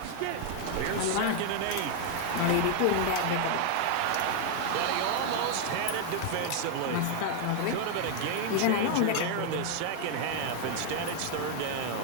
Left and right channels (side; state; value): both; different; correlation 0.00